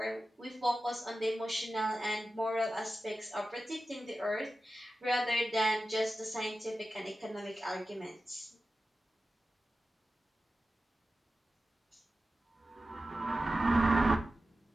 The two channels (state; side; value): normal; both; correlation 0.94